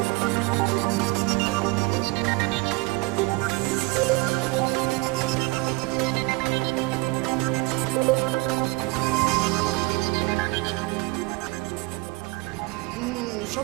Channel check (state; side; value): quieter; left; 25.0 dB